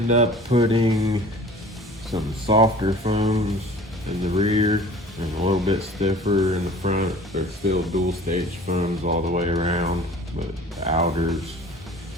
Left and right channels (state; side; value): normal; both; correlation 0.45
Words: up putting some softer foams in the rear and a little bit stiffer in the front. They're still dual stage foams all the way around, but the outer's